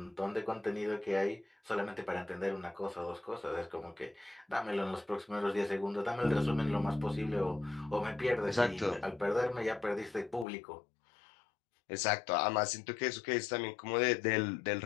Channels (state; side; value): drops out; right; at 10.5 s